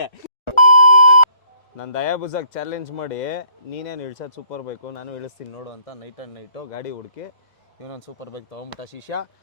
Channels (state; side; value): late; right; 1.4 ms